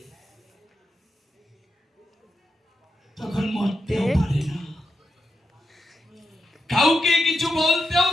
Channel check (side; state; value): both; normal; correlation 0.86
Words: তখন মরতেও পারে না, কাউকে কিছু বলতেও